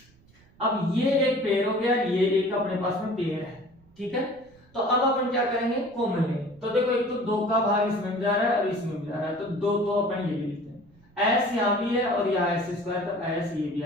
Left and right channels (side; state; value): right; noise; rumble, 29 dB below the sound